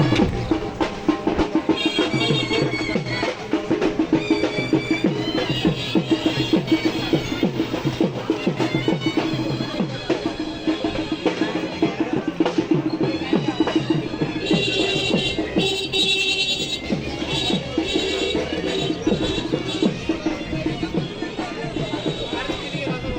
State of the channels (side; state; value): both; identical; correlation 1.00